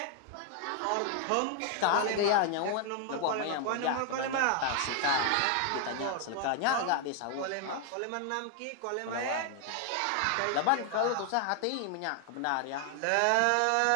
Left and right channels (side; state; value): both; different; correlation 0.00